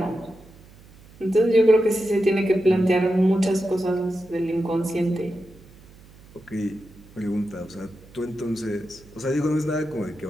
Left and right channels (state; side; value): noise; right; hum, 23 dB below the sound